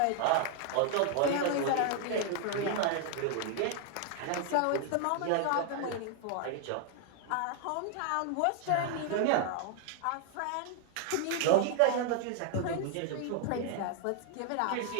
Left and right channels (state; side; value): different; both; correlation 0.00